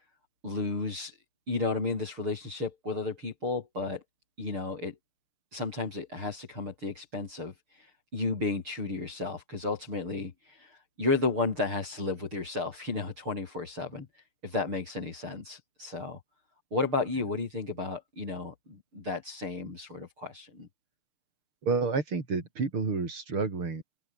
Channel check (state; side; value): late; left; 6.6 ms